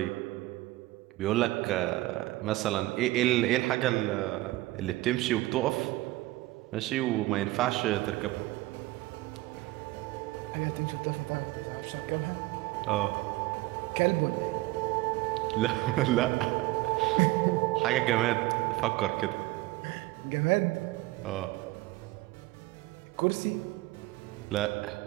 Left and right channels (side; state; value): left; quieter; 18.8 dB